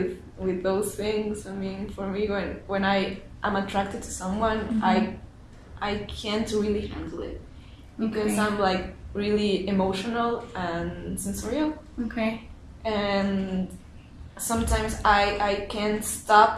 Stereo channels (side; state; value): both; identical; correlation 1.00